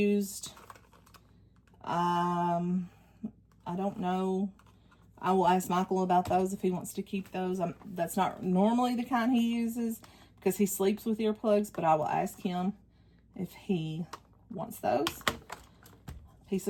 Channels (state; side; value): identical; both; correlation 1.00